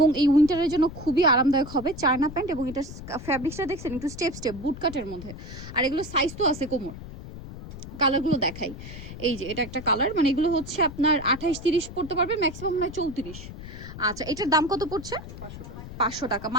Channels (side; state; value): left; noise; rumble, 12 dB below the sound